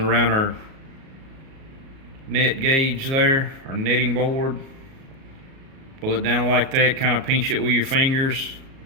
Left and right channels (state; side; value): late; left; 37 ms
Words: our net gauge there, our netting board. Pull it down like that, kind of pinch it with your fingers,